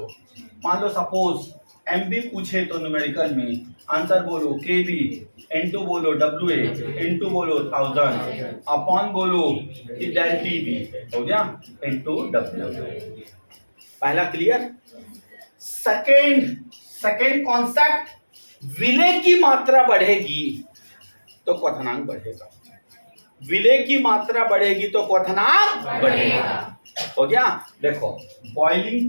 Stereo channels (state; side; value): inverted; both; correlation -1.00